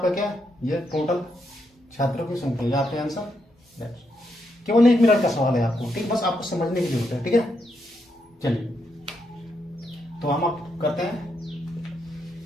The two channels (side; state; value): both; normal; correlation 0.80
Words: क्या ये टोटल छात्रों की संख्या, ये आपका आंसर। केवल 1 मिनट का सवाल है आपको, ठीक, बस आपको समझने की जरूरत है, ठीक है। चलिए तो हम अब करते हैं